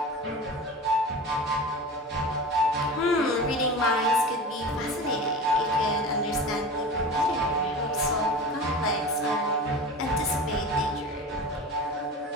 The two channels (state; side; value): normal; both; correlation 0.32